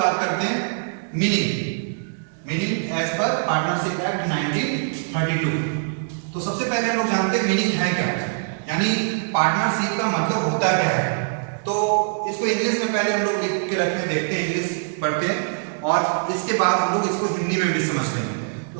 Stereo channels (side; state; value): left; silent; digital silence